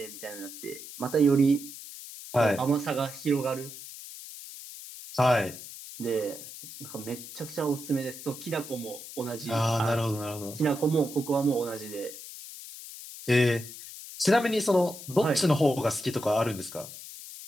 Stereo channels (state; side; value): noise; left; hiss, 13 dB below the sound